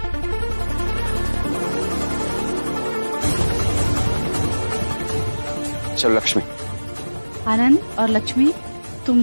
चलो लक्ष्मी। आनंद और लक्ष्मी,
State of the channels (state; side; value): inverted; both; correlation -1.00